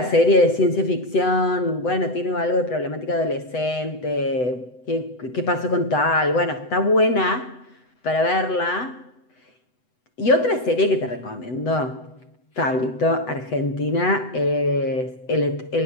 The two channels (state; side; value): late; right; 8.0 ms